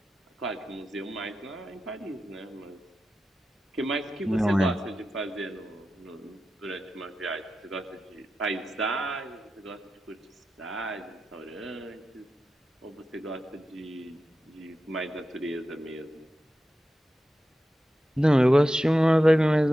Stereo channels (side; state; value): both; normal; correlation 0.92